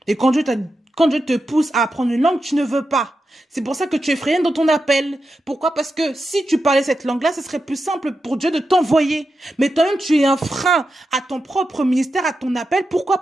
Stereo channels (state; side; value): normal; both; correlation 0.89